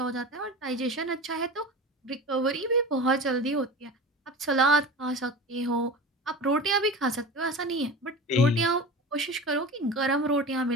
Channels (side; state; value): both; normal; correlation 0.32